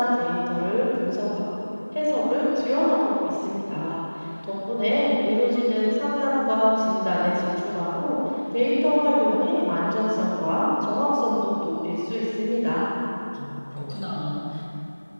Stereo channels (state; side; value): inverted; both; correlation -1.00